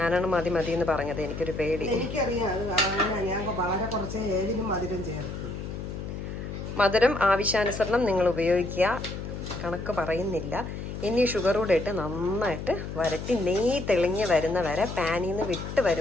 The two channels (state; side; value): noise; left; hum, 7 dB below the sound